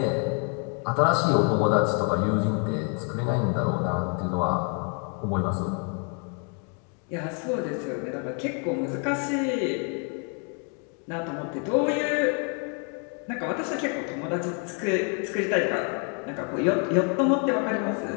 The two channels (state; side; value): quieter; right; 39.7 dB